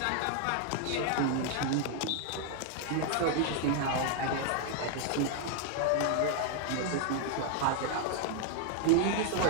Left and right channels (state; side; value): different; both; correlation 0.00